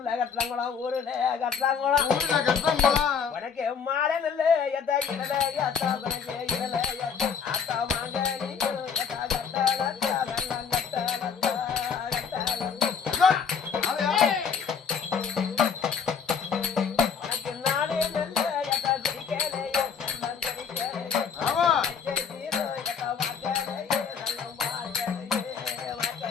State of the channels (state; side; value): quieter; right; 6.5 dB